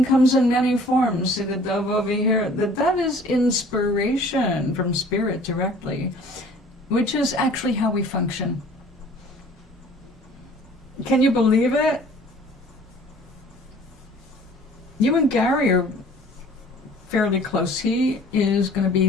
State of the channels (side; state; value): both; normal; correlation 0.51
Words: comes in many forms. See the dove over here? That is inspiration from spirit directly, which is actually how we function. Can you believe it? You and Gary are fairly close. He is going to